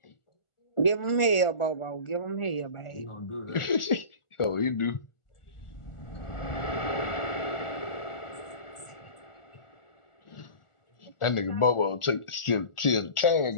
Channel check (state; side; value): late; right; 1.4 ms